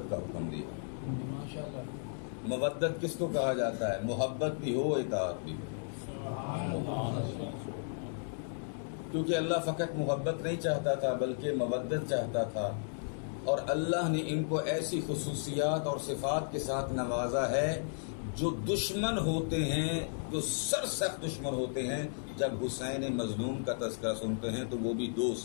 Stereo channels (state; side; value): silent; right; digital silence